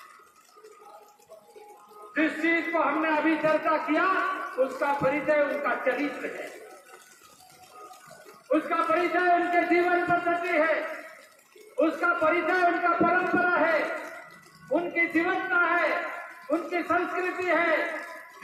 जिस चीज को हमने अभी चर्चा किया, उसका परिचय उनका चरित्र है, उसका परिचय उनके जीवन पद्धति है, उसका परिचय उनका परंपरा है, उनकी जीवनता है, उनकी संस्कृति है,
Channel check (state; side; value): identical; both; correlation 1.00